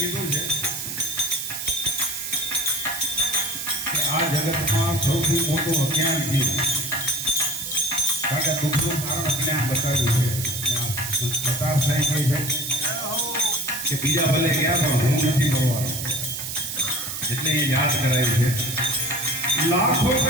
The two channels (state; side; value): noise; right; hiss, 5 dB below the sound